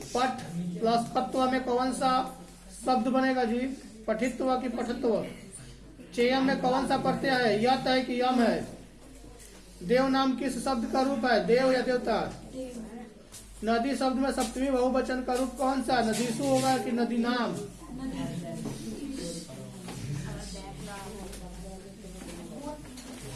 प्लस पत्व में कौन सा शब्द बनेगा जी? पठित्व की पठत्व? चेयम में कौन सा प्रत्यय है? यत है कि यम है? देव नाम किस शब्द का रूप है? देव या देवता? नदी शब्द में सप्तमी बहुवचन का रूप कौन सा? नदीसु होगा कि नदी नाम?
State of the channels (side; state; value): both; identical; correlation 1.00